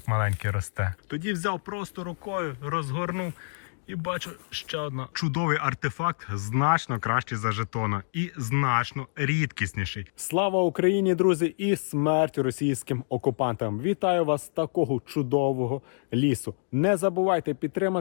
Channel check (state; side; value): silent; right; digital silence